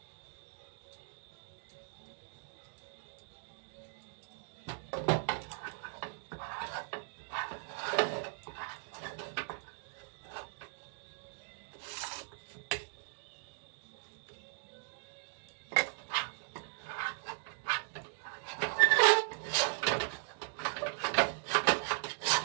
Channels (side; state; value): left; silent; digital silence